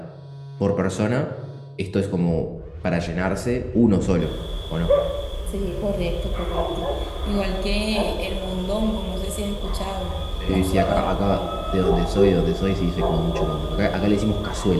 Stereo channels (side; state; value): both; identical; correlation 1.00